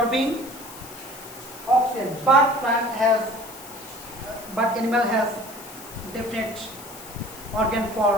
oxygen, but animal has definite organ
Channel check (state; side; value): noise; left; hiss, 16 dB below the sound